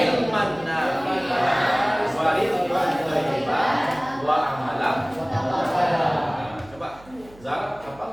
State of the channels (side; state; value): right; noise; hum, 23 dB below the sound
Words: nafi'an wa rizqan thayyiban wa amalan mutaqabbalan. Coba Zara